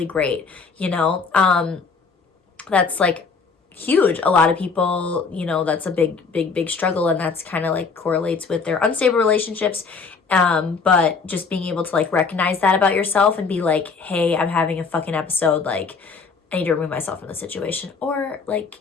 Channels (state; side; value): quieter; right; 4.9 dB